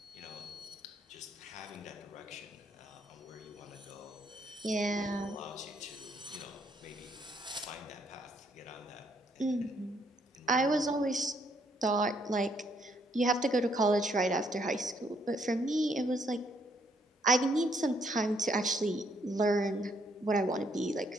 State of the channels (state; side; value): normal; both; correlation 0.71